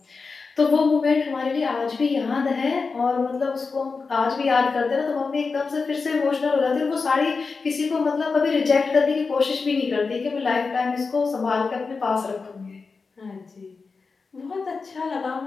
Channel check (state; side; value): quieter; right; 4.6 dB